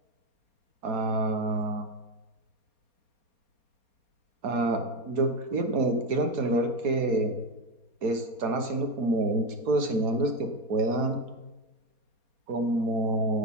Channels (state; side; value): late; left; 4.3 ms